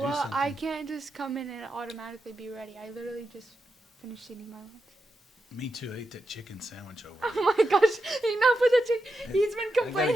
something, I can't just come in and automatically be ready. I literally just finished eating my lunch. Me too. I ate that chicken sandwich over. Oh my gosh, enough with the chicken. He's been I gotta complaining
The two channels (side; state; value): both; normal; correlation 0.88